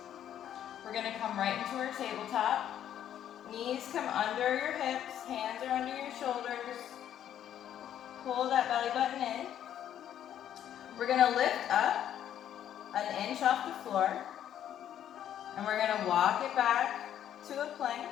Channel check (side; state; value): right; quieter; 10.5 dB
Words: We're going to come right into our tabletop. Knees come under your hips, hands are under your shoulders. Pull that belly button in. We're going to lift up 1 inch off the floor. And we're going to walk it back to a plank